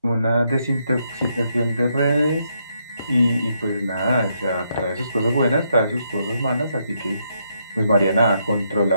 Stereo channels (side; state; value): both; inverted; correlation -0.78